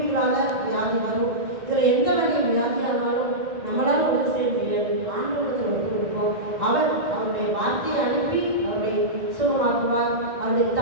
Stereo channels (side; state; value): left; late; 1.7 ms